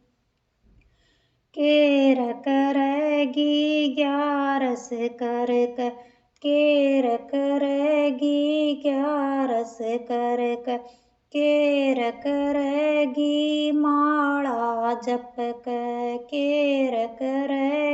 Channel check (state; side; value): identical; both; correlation 1.00